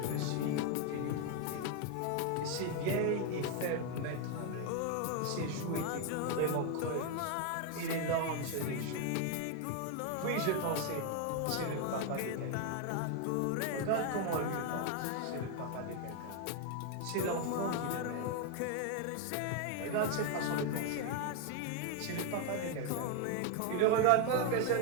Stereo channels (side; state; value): both; different; correlation 0.01